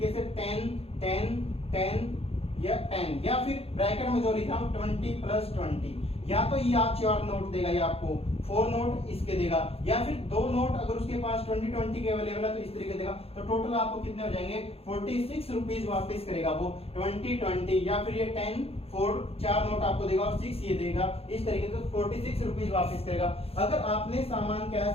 से 10 10 10 या 10 या फिर ब्रैकेट में जो लिखा हूं 20 प्लस 20, या तो ये आप 4 नोट देगा या आपको 4 नोट इसके देगा, या फिर 2 नोट अगर उसके पास 20 20 के अवेलेबल है तो इस तरीके देगा। तो टोटल आपको कितने हो जाएंगे 46 रुपीज वापस करेगा वो 20 20, या फिर ये 10 4 4 नोट आपको देगा और 6 ये देगा, इस तरीके से 46 रुपीज वापस करेगा। अगर आपने सामान क्या है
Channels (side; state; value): right; late; 0.29 ms